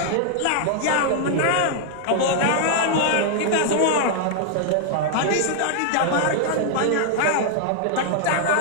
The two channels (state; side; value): different; both; correlation 0.00